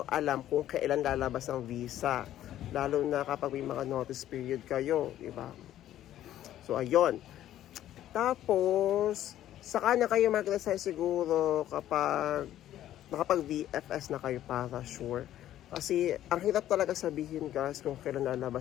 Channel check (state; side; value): quieter; right; 12.5 dB